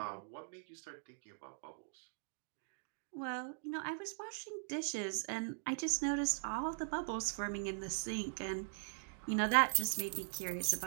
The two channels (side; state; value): left; silent; digital silence